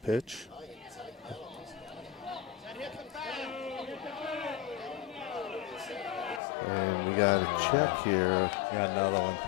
And we got a check here. Got another one.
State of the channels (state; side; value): drops out; right; at 6.4 s